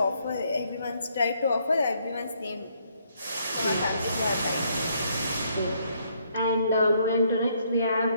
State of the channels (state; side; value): inverted; both; correlation -0.71